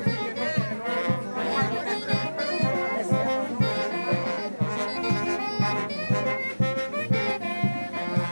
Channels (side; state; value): both; inverted; correlation -1.00